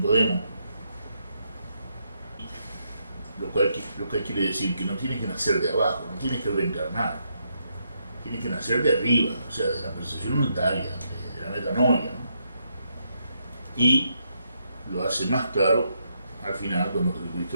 Lo cual quiere decir que no tienes que nacer de abajo, no tienes que reencarnar. Tienes que nacer de arriba, o sea, de la percepción unitaria, de la metanoia, ¿no? Y lo hace más claro al final cuando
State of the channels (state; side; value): inverted; both; correlation -0.79